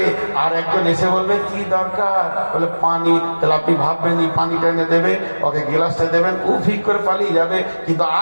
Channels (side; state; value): both; inverted; correlation -1.00